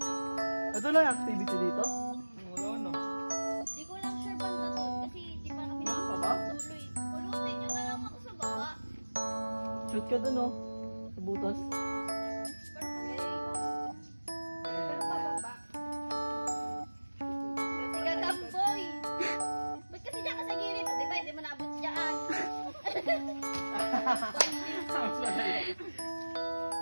Ito lang yung activity dito? Wala na. Di ko lang sure banda to kasi di pa kami nakakatuloy. Pulutin nyo na lang ako sa baba. Shoot ka dun oh. Sa butas. Sige, kamboy. Ba't kasi dyan ka sa gilid? Di ba, hindi mo naabot dyan.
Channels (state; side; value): inverted; both; correlation -1.00